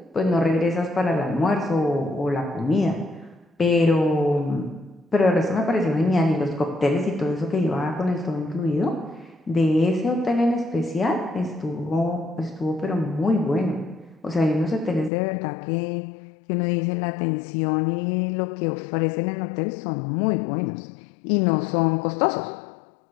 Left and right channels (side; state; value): right; drops out; at 15.1 s